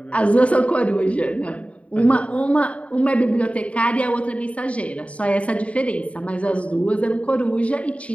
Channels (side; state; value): right; late; 0.064 ms